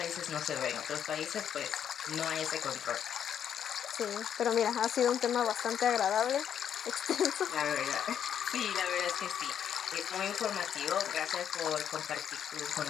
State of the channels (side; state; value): right; quieter; 8.9 dB